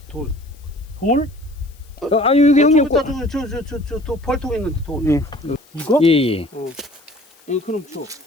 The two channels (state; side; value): noise; left; hiss, 29 dB below the sound